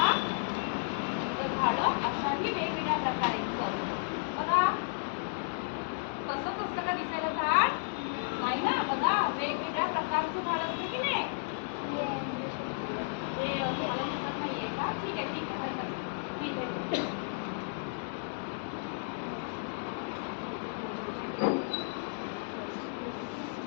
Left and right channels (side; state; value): right; silent; digital silence